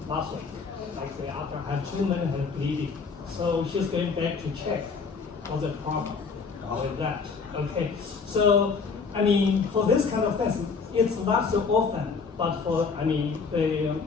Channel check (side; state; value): right; quieter; 5.1 dB